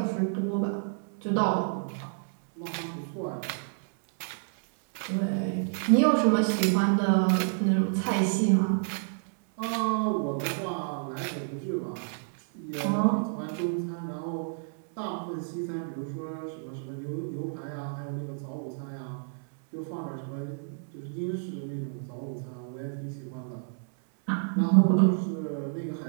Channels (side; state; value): left; silent; 58 dB below the other